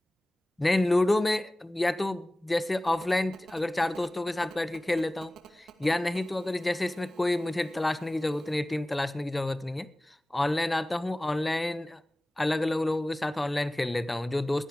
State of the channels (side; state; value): both; normal; correlation 0.98